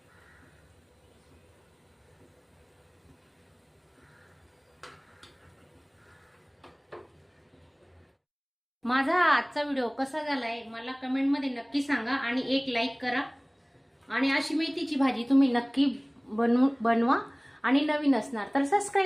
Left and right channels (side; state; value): both; identical; correlation 1.00